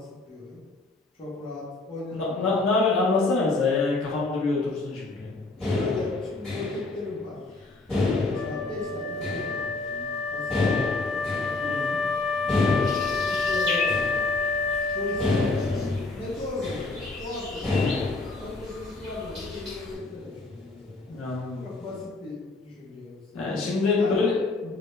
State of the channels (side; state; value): right; quieter; 3.3 dB